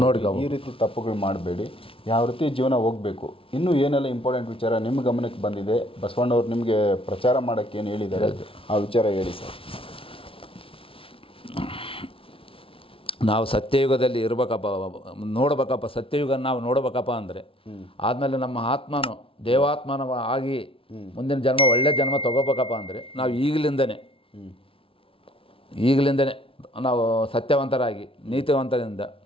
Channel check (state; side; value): late; right; 0.26 ms